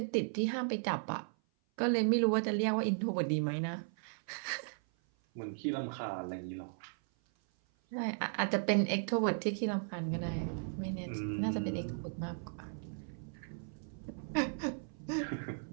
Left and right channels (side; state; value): left; silent; 54 dB below the other